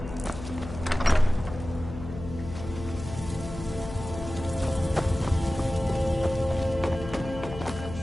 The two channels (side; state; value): left; noise; hum, 10 dB below the sound